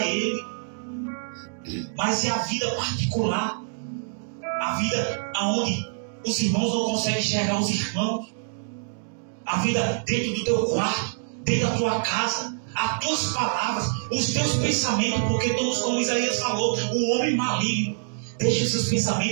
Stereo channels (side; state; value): left; silent; digital silence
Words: Ele. Mas é a vida particular. A vida onde os irmãos não conseguem enxergar os irmãos. A vida dentro do teu quarto, dentro da tua casa. As tuas palavras, os teus pensamentos. Porque todos, como Isaías falou, o homem maligno. Deixa os seus